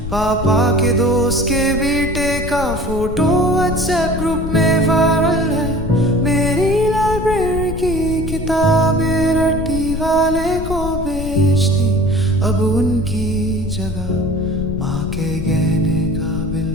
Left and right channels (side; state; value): left; noise; rumble, 7 dB below the sound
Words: पापा के दोस्त के बेटे का फोटो व्हाट्सएप ग्रुप में वायरल है। मेरी लाइब्रेरी की किताबें रट्टी वाले को बेच दी, अब उनकी जगह माँ के गहने का